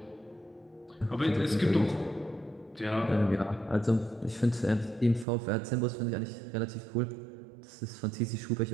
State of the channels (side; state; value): left; drops out; at 5.2 s